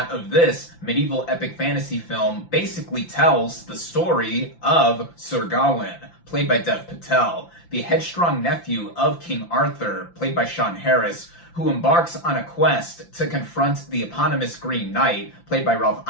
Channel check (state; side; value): late; right; 5.8 ms